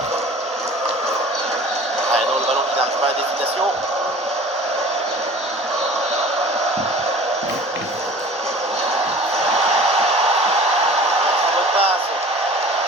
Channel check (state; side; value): normal; both; correlation 0.44